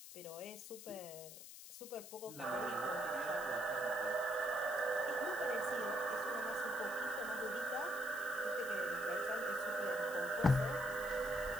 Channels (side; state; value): left; noise; hiss, 13 dB below the sound